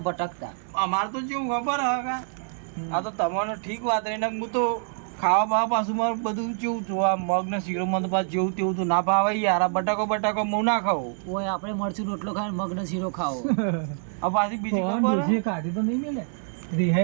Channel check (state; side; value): silent; left; 61 dB below the other